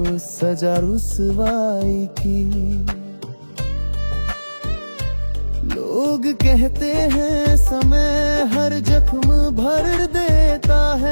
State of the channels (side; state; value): both; inverted; correlation -1.00